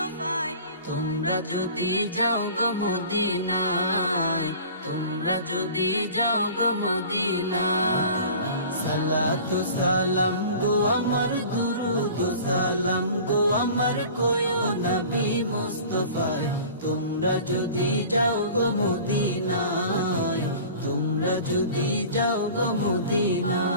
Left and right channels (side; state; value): both; inverted; correlation -0.42